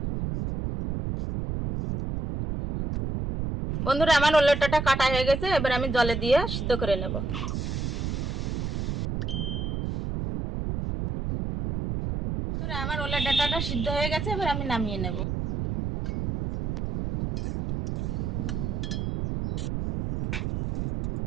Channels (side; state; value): right; noise; rumble, 2 dB below the sound